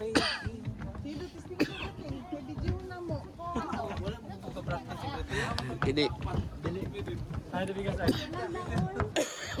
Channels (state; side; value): identical; both; correlation 1.00